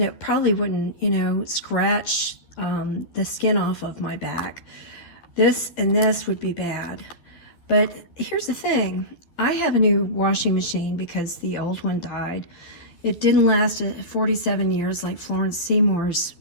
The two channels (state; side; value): late; right; 11 ms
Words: it probably wouldn't, scratch the skin off of my back. This and this would be bad. But here's the thing. I have a new washing machine because the old one died. It didn't last 47 years like Florence Seymour's